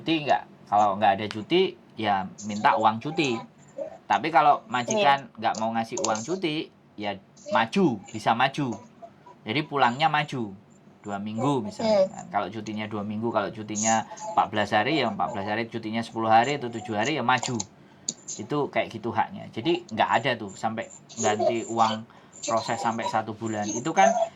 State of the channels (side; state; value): both; identical; correlation 1.00